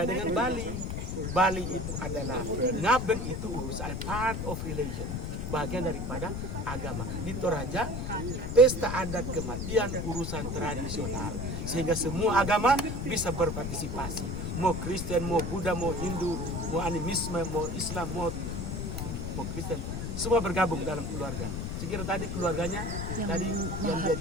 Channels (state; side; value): noise; left; rumble, 3 dB below the sound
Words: dengan Bali. Bali itu adalah ngaben, itu urusan part of religion, bagian daripada agama. Di Toraja, pesta adat kematian urusan tradisional, sehingga semua agama bisa berpartisipasi. Mau Kristen, mau Buddha, mau Hindu, mau animisme, mau Islam, mau Kristen, semua bergabung dalam keluarga. Sekira tadi keluarganya yang dia